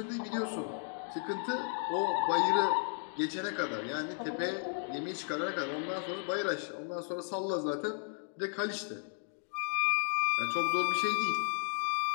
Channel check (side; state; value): right; silent; 55 dB below the other